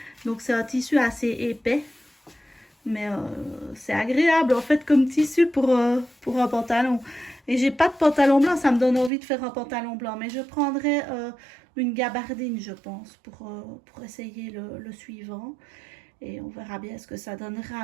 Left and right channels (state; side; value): drops out; left; at 9.1 s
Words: Donc, c'est un tissu assez épais. Mais c'est agréable, en fait, comme tissu pour un pantalon. Et j'ai pas de pantalon blanc, ça me donne envie de faire un pantalon blanc. Mais je prendrai une gabardine, je pense, pour essayer le suivant. Et on verra bien ce que ça